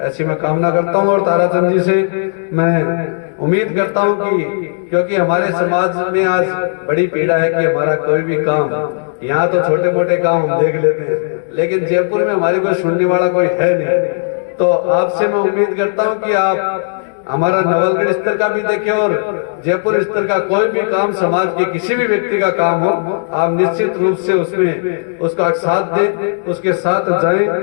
ऐसी मैं कामना करता हूँ। और ताराचंद जी से मैं उम्मीद करता हूँ कि क्योंकि हमारे समाज में आज बड़ी पीड़ा है कि हमारा कोई भी काम, यहाँ तो छोटे मोटे काम हम देख लेते हैं लेकिन जयपुर में हमारी कोई सुनने वाला कोई है नहीं। तो आपसे मैं उम्मीद करता हूँ कि आप हमारा नवलगढ़ स्तर का भी देखें और जयपुर स्तर का कोई भी काम, समाज के किसी भी व्यक्ति का काम हो, आप निश्चित रूप से उसमें उसका साथ दें, उसके साथ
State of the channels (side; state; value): right; silent; digital silence